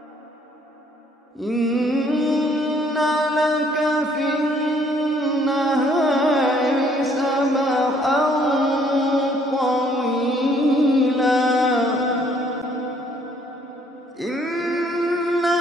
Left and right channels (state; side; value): normal; both; correlation 0.63